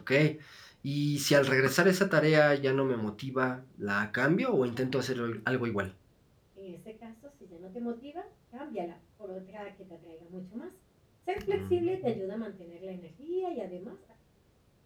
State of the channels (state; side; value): identical; both; correlation 1.00